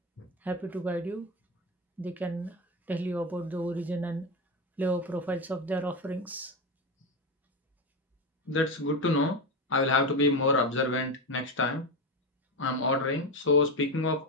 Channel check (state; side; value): normal; both; correlation 0.16